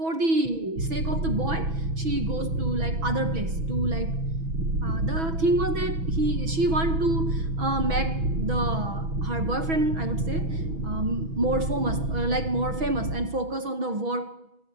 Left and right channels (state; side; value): late; left; 6.2 ms